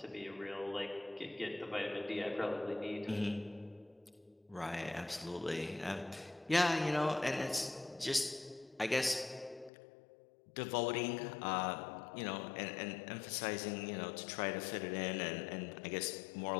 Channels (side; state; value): right; drops out; at 9.7 s